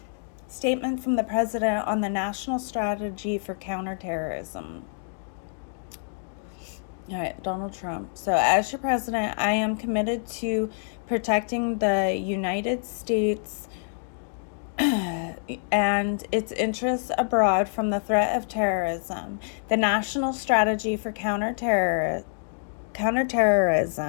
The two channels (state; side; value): silent; right; digital silence